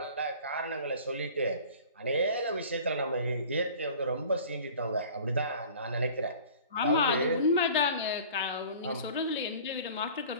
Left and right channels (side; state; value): both; inverted; correlation -0.45